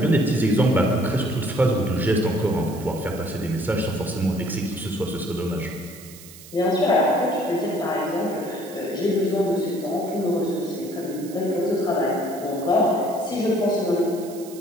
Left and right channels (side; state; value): right; noise; hiss, 18 dB below the sound